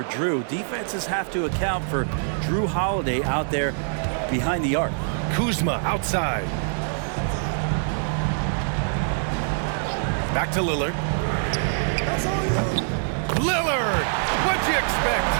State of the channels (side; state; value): left; silent; 59 dB below the other